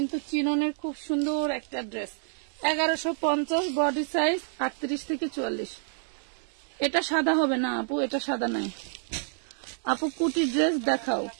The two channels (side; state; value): left; silent; 59 dB below the other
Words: চিননের খুব সুন্দর একটা ড্রেস, 1150, বডি সাইজ 38 থেকে 44। এটা সাদা হবে না আপু, এটা সাদা নাই আপু। কুটি ড্রেস দেখাও,